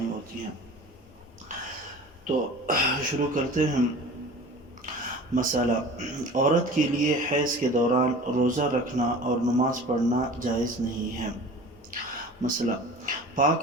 ہوتی ہے. تو شروع کرتے ہیں. مسئلہ: عورت کے لیے حیض کے دوران روزہ رکھنا اور نماز پڑھنا جائز نہیں ہے. مسئلہ:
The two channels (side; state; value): both; normal; correlation 0.39